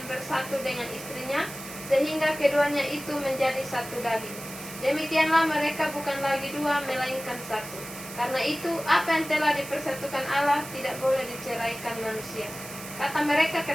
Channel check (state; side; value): noise; right; hiss, 12 dB below the sound